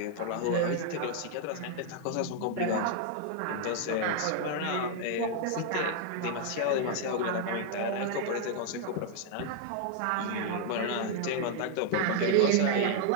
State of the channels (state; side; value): different; both; correlation 0.00